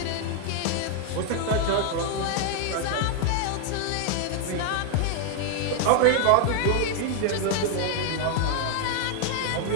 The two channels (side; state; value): both; different; correlation 0.00